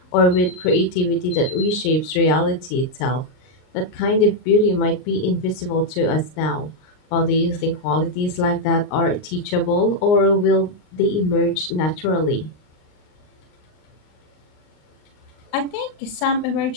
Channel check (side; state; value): right; late; 39 ms